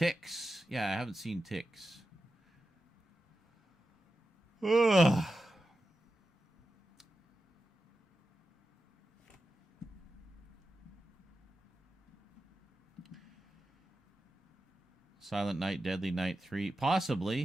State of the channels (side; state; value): both; normal; correlation 0.91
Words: Yeah, I haven't seen Ticks. Ugh. Silent Night, Deadly Night 3.